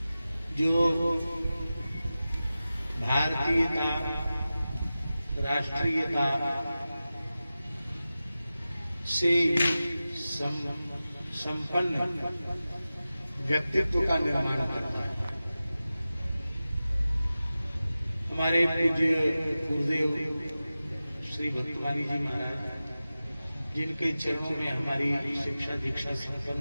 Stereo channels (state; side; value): inverted; both; correlation -0.95